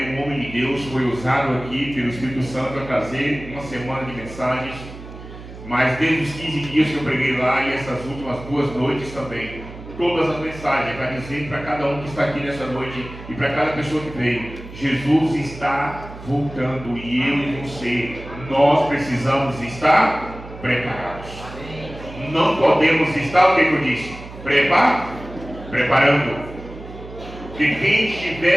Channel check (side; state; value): right; noise; hum, 14 dB below the sound